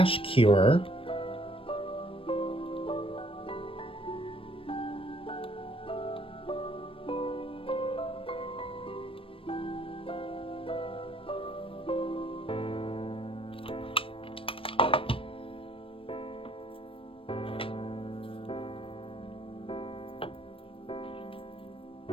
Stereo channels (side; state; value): right; late; 0.26 ms